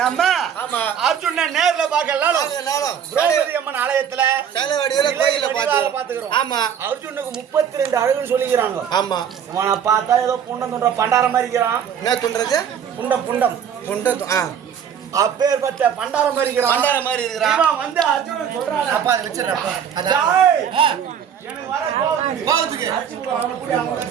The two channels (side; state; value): left; quieter; 8.3 dB